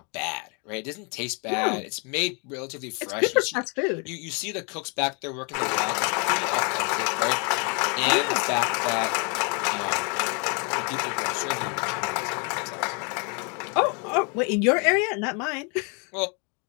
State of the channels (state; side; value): quieter; right; 35.0 dB